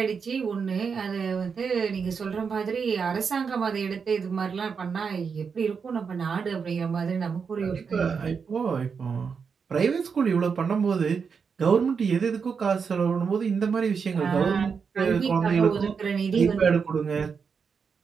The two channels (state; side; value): quieter; left; 5.9 dB